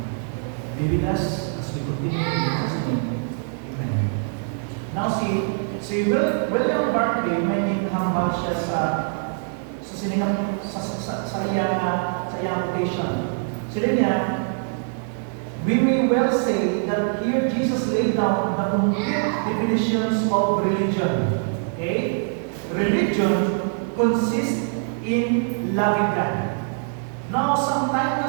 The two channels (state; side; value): silent; left; 63 dB below the other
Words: Be with us as we continue in Jesus' name. Amen. Now si William Barclay, may hambal siya sa iyang quotation. Sila niya, we may well say that here Jesus laid down the complete definitions of religion. Okay? Religion consists in loving God. Now, sometimes